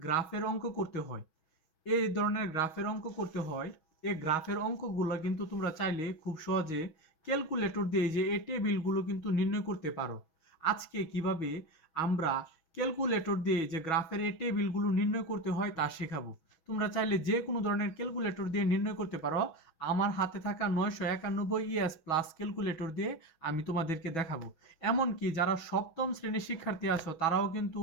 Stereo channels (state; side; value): late; right; 6.2 ms